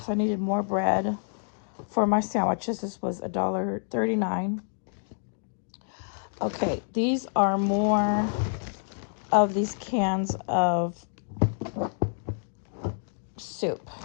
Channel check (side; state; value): right; silent; digital silence